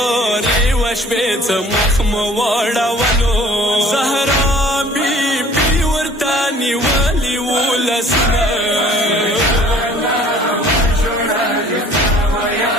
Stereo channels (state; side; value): normal; both; correlation 0.52